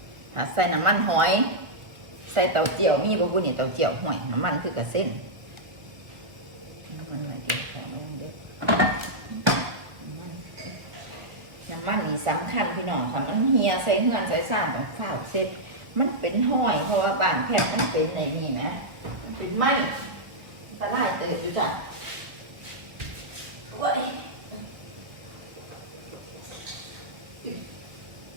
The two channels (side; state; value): left; late; 1.5 ms